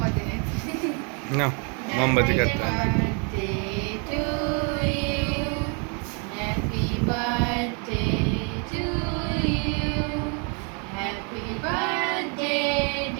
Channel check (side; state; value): left; quieter; 36.7 dB